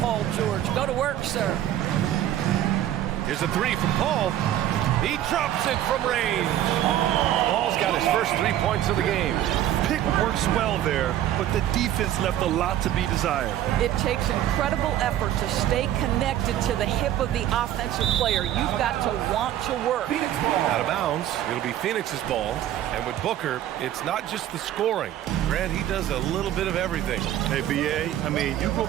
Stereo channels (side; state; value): left; quieter; 12.2 dB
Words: George. Go to work, sir. Here's a 3 from Paul. He drops it from range. Paul's got his first 3 points of the game. Pick works well there, but the defense left a lot to be desired. It takes incredible effort to stay connected to the hip of the offensive player. You've got to want to work. Out of bounds. It'll be Phoenix's ball. And with Booker, it's not just the scoring. Grant, he does a little bit of everything. Hey, B.A., I mean, you go